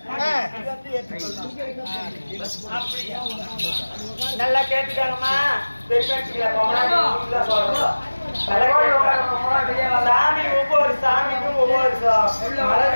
நல்லா கேட்டுக்காங்கம்மா சாமி ஒவ்வொரு சாமிக்கும் ஒவ்வொரு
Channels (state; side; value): inverted; both; correlation -1.00